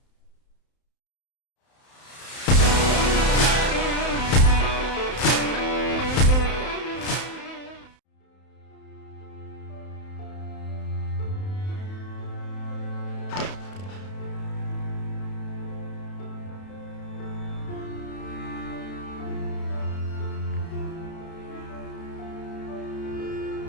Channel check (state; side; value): late; right; 31 ms